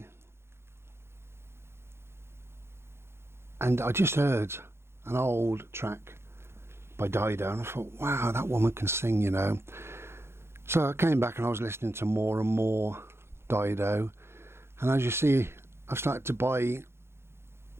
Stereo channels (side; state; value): left; late; 0.12 ms